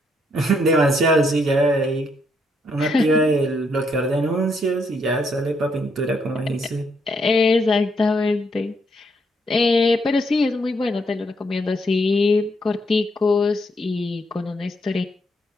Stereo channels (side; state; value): both; normal; correlation 0.74